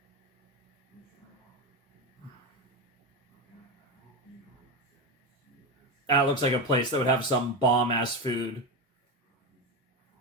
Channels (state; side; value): normal; both; correlation 0.15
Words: That looks like a place that would have some bomb-ass food.